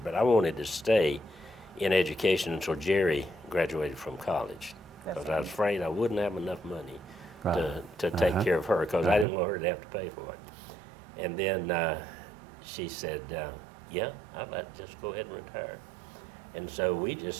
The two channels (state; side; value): drops out; left; at 9.2 s